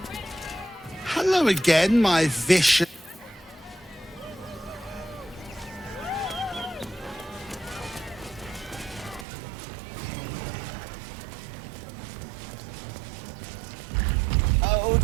Hello again, my vicious... Oh,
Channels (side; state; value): left; drops out; at 9.2 s